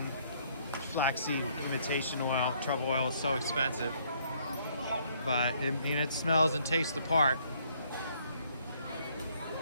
flaxseed imitation oil. Truffle oil is so expensive, but it smells and tastes the part.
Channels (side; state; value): both; inverted; correlation -0.66